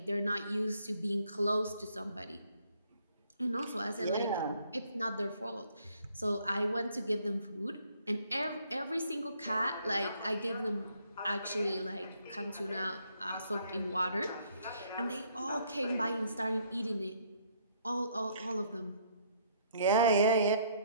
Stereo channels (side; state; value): both; inverted; correlation -0.66